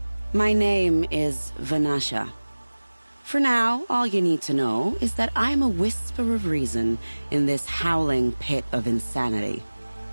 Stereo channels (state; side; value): inverted; both; correlation -1.00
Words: My name is Vanasha. For now, all you need to know is that I'm a whisper of reason in this howling pit of insanity.